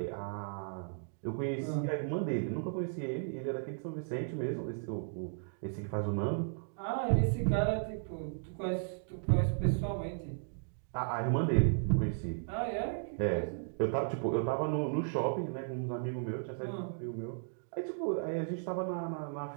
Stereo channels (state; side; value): silent; left; digital silence